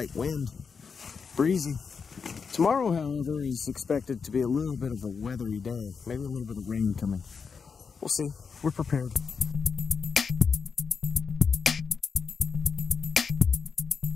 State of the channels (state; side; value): quieter; right; 5.7 dB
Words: wind, breezy. Tomorrow, however, is expected to be a little bit of a weathery day. Maybe a little bit of rain coming. We'll see. We're prepared.